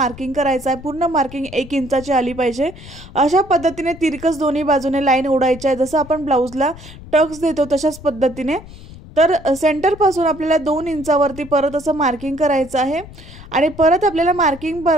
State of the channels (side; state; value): left; noise; rumble, 17 dB below the sound